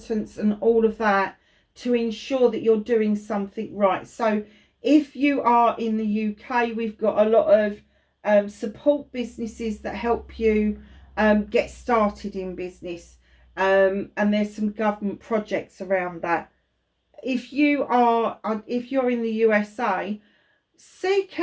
and all of that, to ensure that you're doing something right. So if you are in the UK, we've got a lot of support businesses that help you get started in business. And there's some government projects around that. If you're in the USA, seek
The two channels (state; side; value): identical; both; correlation 1.00